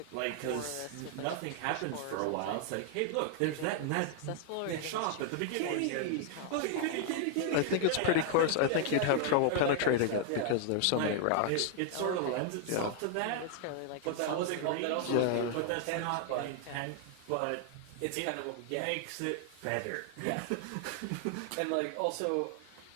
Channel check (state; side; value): different; both; correlation 0.00